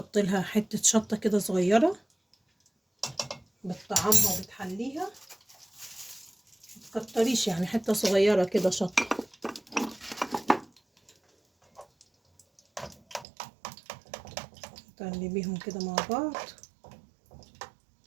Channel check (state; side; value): drops out; left; at 13.2 s